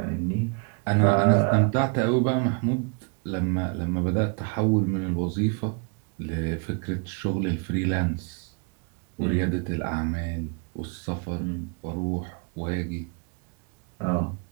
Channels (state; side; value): quieter; left; 36.3 dB